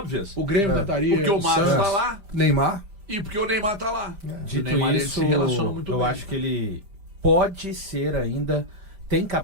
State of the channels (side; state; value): left; late; 5.0 ms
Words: O Grêmio tentaria. Porque o Marcos Santos. tá lá Neymar. e porque o Neymar tá lá. O Dito Neymar ele isso, se relaciona muito eu bem. acho que ele pode ser ainda, tem